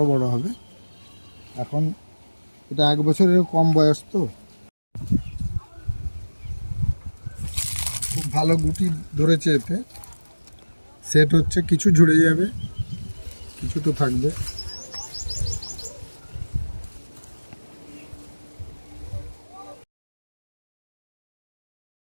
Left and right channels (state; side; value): inverted; both; correlation -1.00